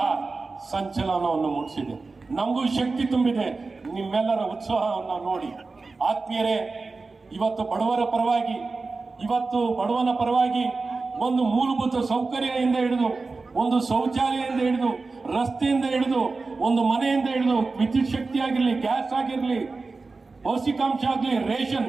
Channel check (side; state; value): left; quieter; 3.9 dB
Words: ಸಂಚಲನವನ್ನು ಮೂಡಿಸಿದೆ. ನಮಗೂ ಶಕ್ತಿ ತುಂಬಿದೆ ನಿಮ್ಮೆಲ್ಲರ ಉತ್ಸಾಹವನ್ನು ನೋಡಿ. ಆತ್ಮೀಯರೇ, ಇವತ್ತು ಬಡವನ ಪರವಾಗಿ ಒಂದು ಮೂಲಭೂತ ಸೌಕರ್ಯದಿಂದ ಹಿಡಿದು, ಒಂದು ಶೌಚಾಲಯದಿಂದ ಹಿಡಿದು, ರಸ್ತೆಯಿಂದ ಹಿಡಿದು, ಒಂದು ಮನೆಯಿಂದ ಹಿಡಿದು, ವಿದ್ಯುತ್ ಶಕ್ತಿ ಆಗಿರಲಿ, ಗ್ಯಾಸ್ ಆಗಿರಲಿ, ಪೌಷ್ಟಿಕಾಂಶ ಆಗಲಿ, ರೇಷನ್,